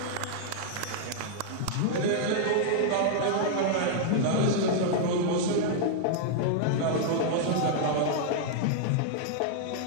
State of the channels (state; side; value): different; both; correlation -0.01